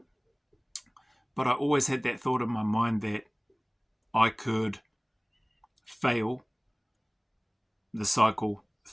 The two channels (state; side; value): identical; both; correlation 1.00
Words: but I always had that thought in my mind that I could fail the cycle